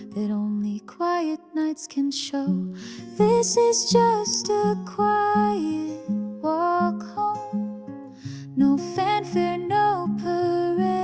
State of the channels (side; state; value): both; identical; correlation 1.00